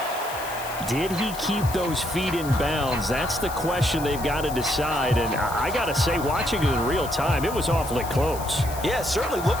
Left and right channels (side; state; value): left; noise; hiss, 13 dB below the sound